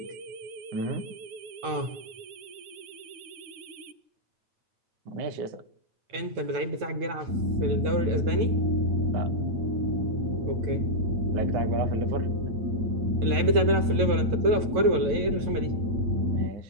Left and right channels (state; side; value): late; left; 9.1 ms